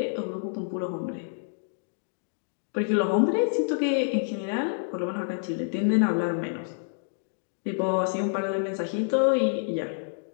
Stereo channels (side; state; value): right; silent; digital silence